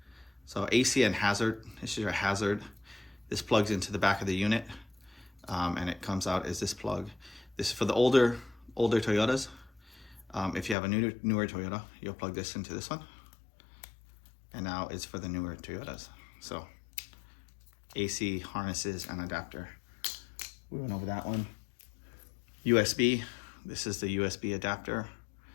So AC and hazard, this is your hazard. This plugs into the back of the unit, and it comes out as this plug. This is for the older Toyotas. If you have a newer Toyota, you'll plug this into this one. And now it's for the newer Toyotas. So AC, harnesses, and adapter. We went over that one. USB, this is the USB adapter.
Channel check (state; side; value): drops out; right; at 10.8 s